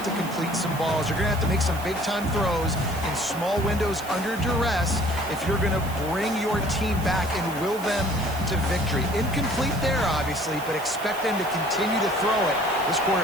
to complete some balls. You're going to have to make some big-time throws in small windows under duress if you're going to bring your team back and will them to victory. Incomplete there, obviously, but expect them to continue to throw it. This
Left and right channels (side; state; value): right; noise; hiss, 15 dB below the sound